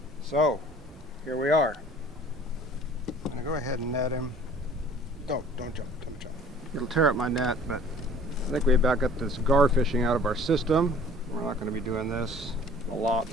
so here we are. I'm gonna go ahead and net him. Don't jump. It'll tear up my net, but I think we about got this gar fishing out of our system. We're not gonna be doing this a lot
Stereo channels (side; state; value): both; normal; correlation 0.50